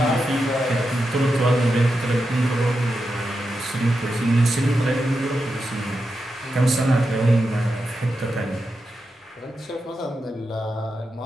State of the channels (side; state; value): both; normal; correlation 0.88